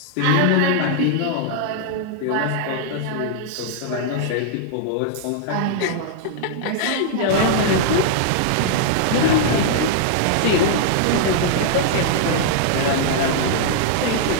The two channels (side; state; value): both; different; correlation -0.01